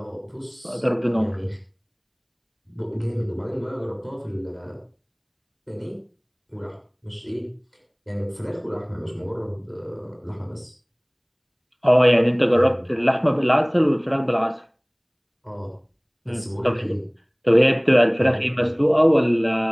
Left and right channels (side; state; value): both; identical; correlation 1.00